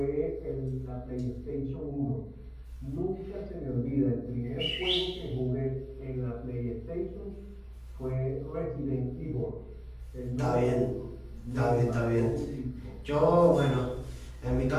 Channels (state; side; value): identical; both; correlation 1.00